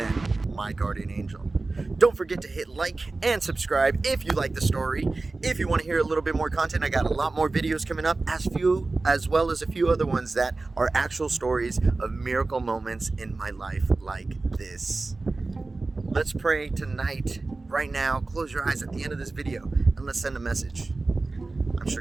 my guardian angel. Don't forget to hit like and subscribe if you like the story. If you want to hear a little bit more content, I got a lot more videos coming up, as well as a few other ones that are actual stories of miracle moments in my life like this. Let's pray tonight, right now. Close your eyes at the end of this video and let's send a message. I'm sure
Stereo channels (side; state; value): left; quieter; 3.5 dB